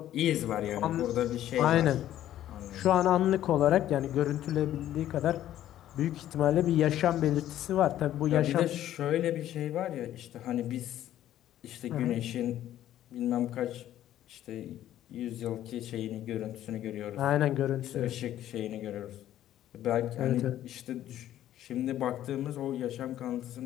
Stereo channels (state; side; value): quieter; right; 12.4 dB